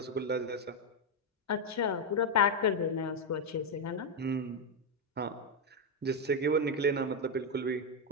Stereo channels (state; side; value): normal; both; correlation 0.04